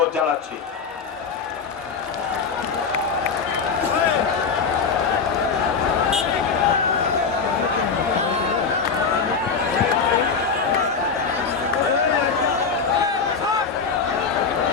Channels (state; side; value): quieter; right; 5.4 dB